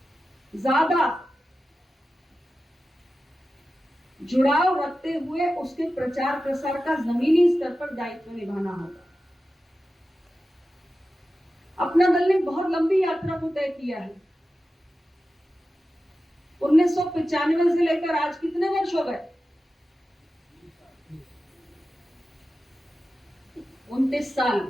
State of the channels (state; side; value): normal; both; correlation 0.93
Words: ज्यादा जुड़ाव रखते हुए उसके प्रचार प्रसार का जमीनी स्तर पर दायित्व निभाना होगा। अपना दल ने बहुत लंबी यात्रा को तय किया है। 1995 से लेकर आज कितने वर्ष हो गए? 29 साल।